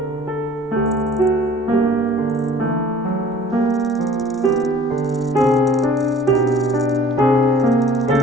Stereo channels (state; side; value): normal; both; correlation 0.50